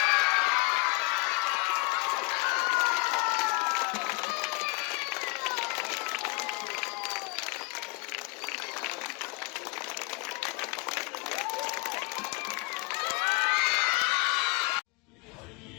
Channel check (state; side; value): quieter; right; 28.3 dB